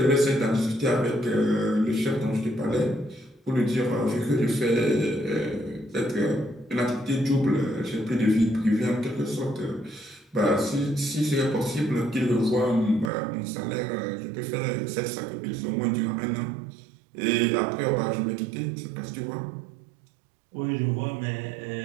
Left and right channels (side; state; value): left; drops out; at 13.1 s